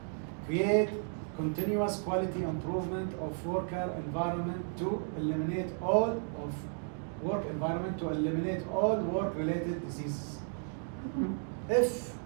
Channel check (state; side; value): silent; left; 55 dB below the other